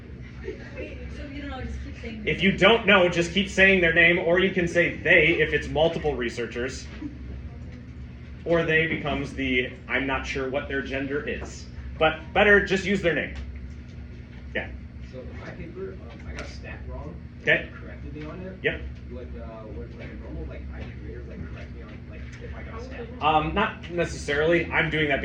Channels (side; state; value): both; identical; correlation 1.00